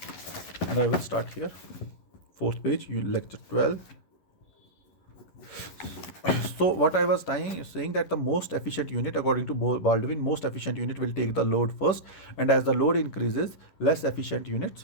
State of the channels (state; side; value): late; right; 11 ms